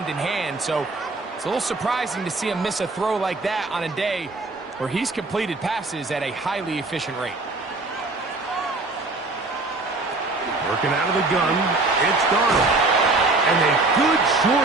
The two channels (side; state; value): left; quieter; 3.3 dB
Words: in hand, so it's a little surprising to see him miss a throw like that on a day where he's completed passes at a highly efficient rate. Working out of the gun, it's Darnold. And a good